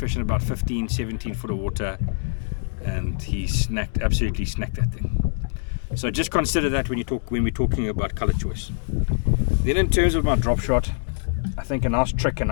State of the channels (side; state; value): right; silent; digital silence